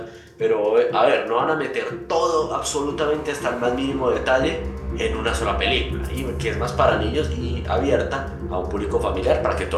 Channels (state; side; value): identical; both; correlation 1.00